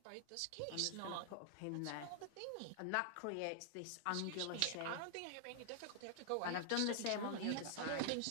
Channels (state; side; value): different; both; correlation 0.00